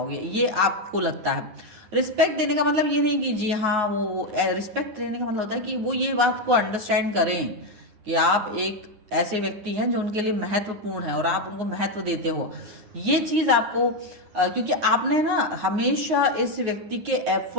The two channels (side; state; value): left; late; 9.7 ms